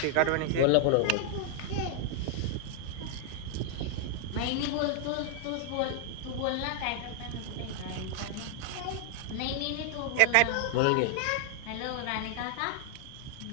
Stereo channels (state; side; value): different; both; correlation 0.00